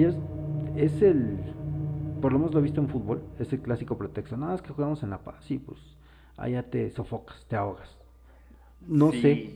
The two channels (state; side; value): identical; both; correlation 1.00